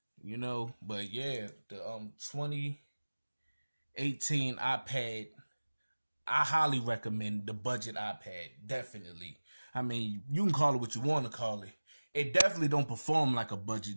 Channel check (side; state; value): both; inverted; correlation -1.00